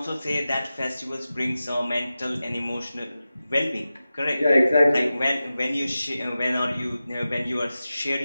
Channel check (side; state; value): both; inverted; correlation -0.94